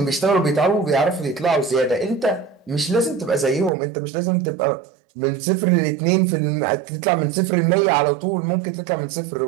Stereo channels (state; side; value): drops out; left; at 3.7 s